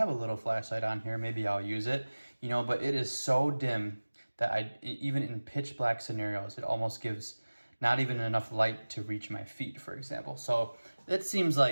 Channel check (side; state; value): both; inverted; correlation -1.00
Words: a little flashlight on here, maybe I'll use it, but it is so dim that even in pitch black scenarios, it almost gives not even enough light to reach my feet, for example. So it seems